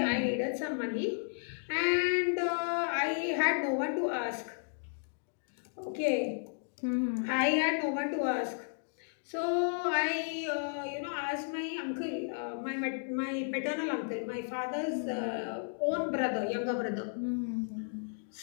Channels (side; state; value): right; silent; digital silence